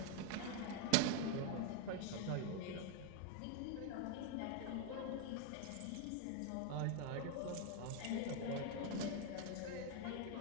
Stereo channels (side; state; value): both; different; correlation 0.00